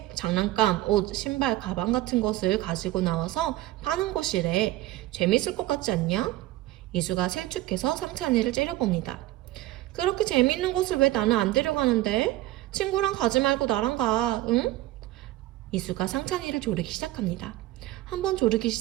장난감, 옷, 신발, 가방 같은 것을 가지고 나와서 파는 곳이래. 재밌을 것 같지 않냐? 이수가 셀쭉해서 상찬이를 째려봅니다. 그렇게 재밌는 곳을 왜 나는 안 데려가는데? 친구랑 가지 말고 나랑 가, 응? 이수가 상찬이를 조르기 시작합니다. 한번 조르기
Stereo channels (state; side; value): quieter; left; 16.2 dB